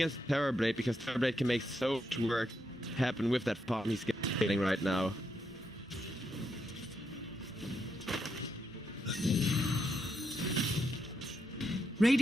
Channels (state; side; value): normal; both; correlation 0.81